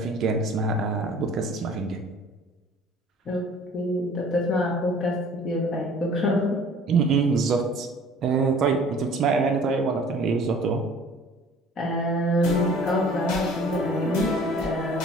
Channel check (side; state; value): both; normal; correlation 0.49